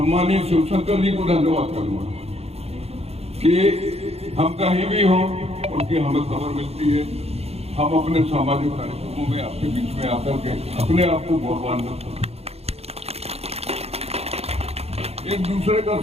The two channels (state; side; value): late; left; 0.30 ms